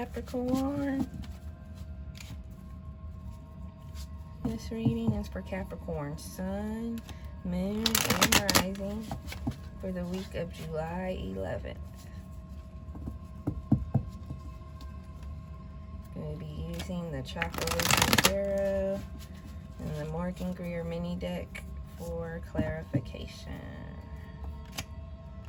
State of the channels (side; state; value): both; identical; correlation 1.00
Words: This reading is for Capricorn Sun, Moon, and Rising for the week of July 11th. Going to be using the Chocolate Tarot and the Morgan Greer mini deck for clarification.